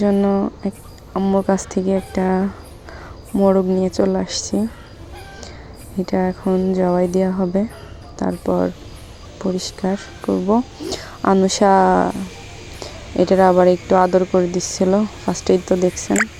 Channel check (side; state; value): both; identical; correlation 1.00